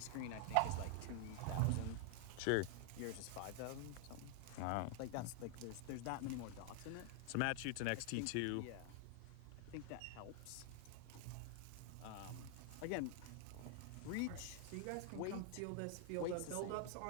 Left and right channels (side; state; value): both; different; correlation 0.00